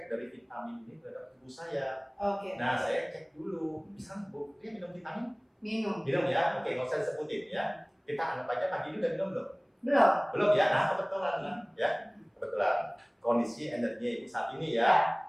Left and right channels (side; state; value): both; identical; correlation 1.00